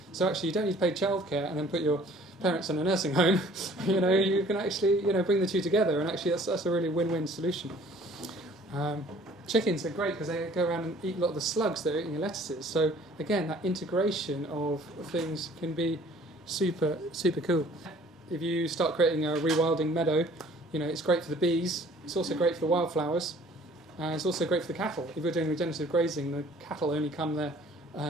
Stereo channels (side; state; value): both; normal; correlation 0.54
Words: So actually you don't need to pay childcare and then put your parents in a nursing home. You can actually bring the two together, and actually that's a really win-win solution. Chickens are great because they go around and eat a lot of the slugs that are eating your lettuces. So again, that integration of things can be super, super cool. If you start creating a rewilding meadow, it's great for the bees. It's also great for the wildflowers. It's also great for the cattle. If you're doing regenerative grazing, the cattle only come there,